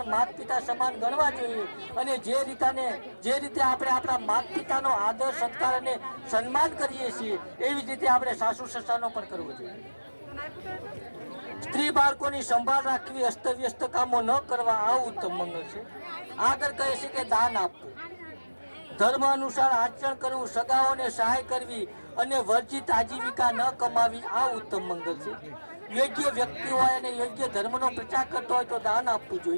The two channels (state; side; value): inverted; both; correlation -1.00